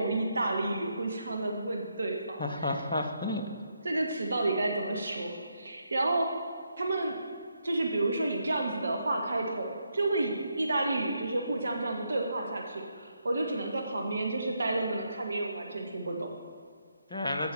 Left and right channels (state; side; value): inverted; both; correlation -0.79